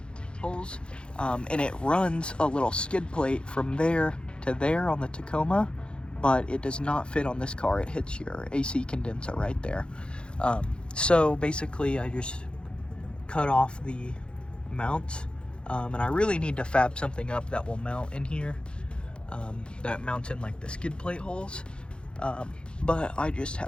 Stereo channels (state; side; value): late; right; 0.054 ms